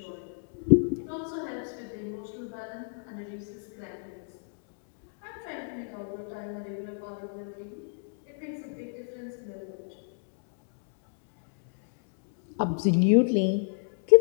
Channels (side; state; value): right; silent; digital silence